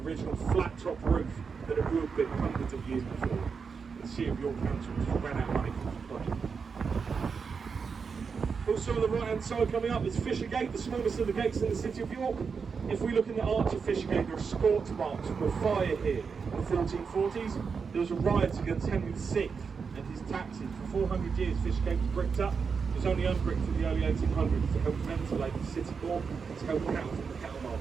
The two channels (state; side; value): quieter; left; 5.6 dB